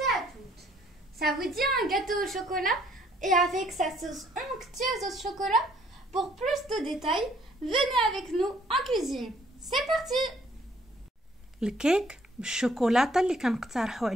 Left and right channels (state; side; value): normal; both; correlation 0.63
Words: et à toutes. Ça vous dit un gâteau au chocolat et avec sa sauce onctueuse au chocolat? Pour plus de détails, venez avec nous en cuisine. C'est parti. الكيك بالشوكولاتة اللي كنقترحه